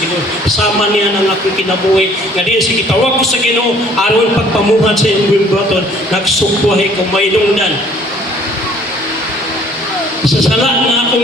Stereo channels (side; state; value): both; normal; correlation 0.57